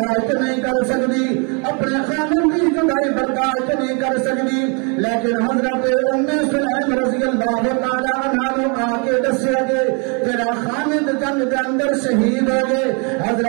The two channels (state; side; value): quieter; left; 35.4 dB